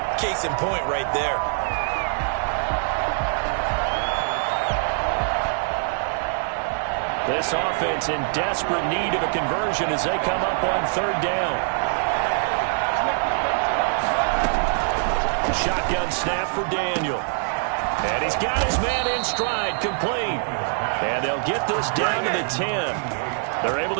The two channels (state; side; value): silent; left; 63 dB below the other